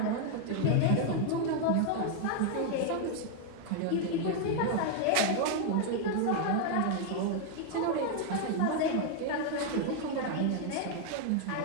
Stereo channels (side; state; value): both; different; correlation 0.00